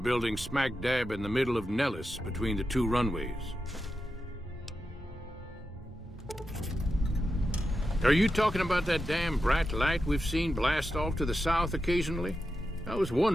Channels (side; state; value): both; normal; correlation 0.89